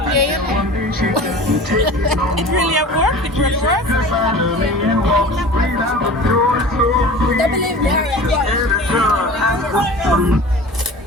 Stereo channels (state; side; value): normal; both; correlation 0.39